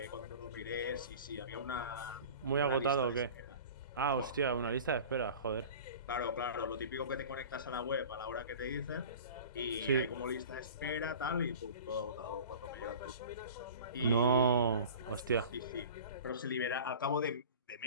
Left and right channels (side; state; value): both; inverted; correlation -0.39